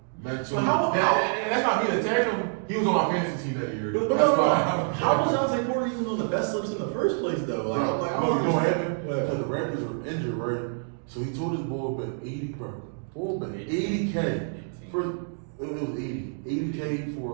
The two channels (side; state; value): left; silent; 60 dB below the other